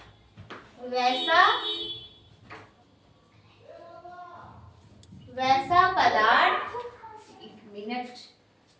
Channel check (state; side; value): identical; both; correlation 1.00